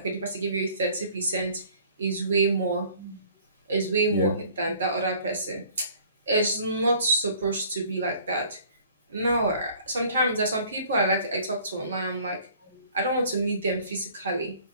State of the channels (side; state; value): both; inverted; correlation -0.54